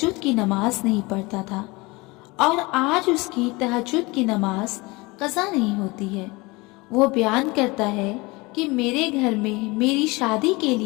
کی نماز نہیں پڑھتا تھا اور آج اس کی تہجد کی نماز قضا نہیں ہوتی ہے۔ وہ بیان کرتا ہے کہ میرے گھر میں میری شادی کے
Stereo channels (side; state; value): right; quieter; 24.1 dB